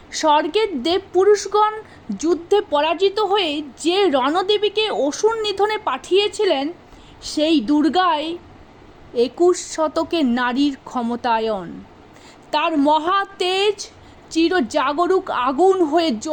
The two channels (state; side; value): identical; both; correlation 1.00